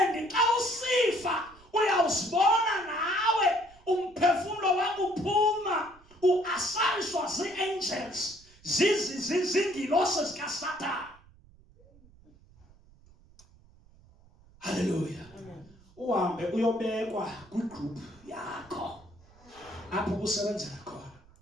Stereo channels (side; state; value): right; noise; rumble, 26 dB below the sound